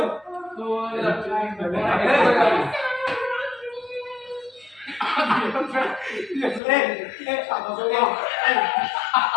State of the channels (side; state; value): right; drops out; at 6.6 s